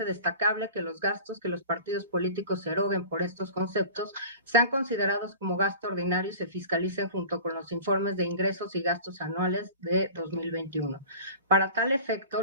destacable que los gastos que los partidos políticos se eroguen por estos conceptos sean considerados como gasto ordinario y se fiscalicen junto con los informes de ingresos y gastos anuales de 2021. Para tal efecto,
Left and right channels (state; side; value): inverted; both; correlation -0.39